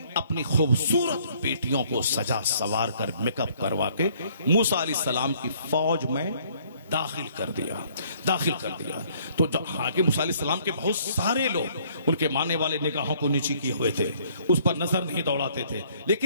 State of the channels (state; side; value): inverted; both; correlation -0.61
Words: अपनी खूबसूरत बेटियों को सजा सवार कर मेकअप करवा के मूसा अलैहिस्सलाम की फौज में दाखिल कर दिया। तो जब हालांकि मूसा अलैहिस्सलाम के बहुत सारे लोग उनके मानने वाले निगाहों को नीची किए हुए थे, उस पर नजर नहीं दौड़ाते थे,